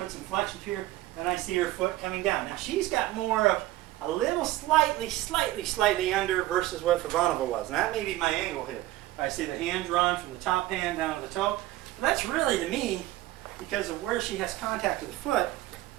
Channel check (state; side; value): quieter; left; 16.2 dB